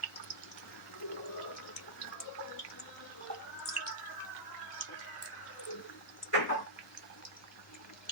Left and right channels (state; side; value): normal; both; correlation -0.10